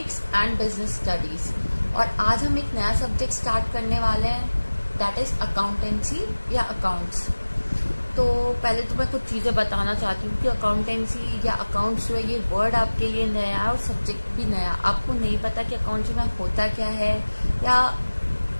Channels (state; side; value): inverted; both; correlation -1.00